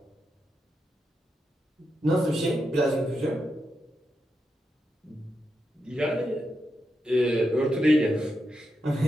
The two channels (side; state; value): both; normal; correlation 0.86